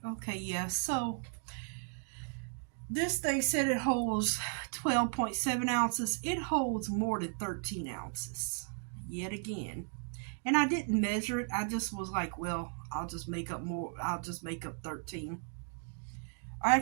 Okay, yeah. So this thing said it holds 12.7 ounces. It holds more than 13 ounces. Yet again. And I didn't measure it. I just was like, well, I'll just make up more. I'll just make up 13. Or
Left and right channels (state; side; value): silent; left; 54 dB below the other